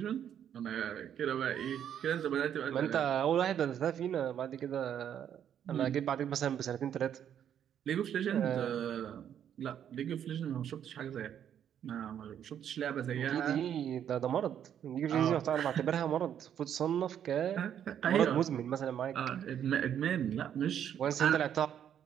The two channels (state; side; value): quieter; left; 9.4 dB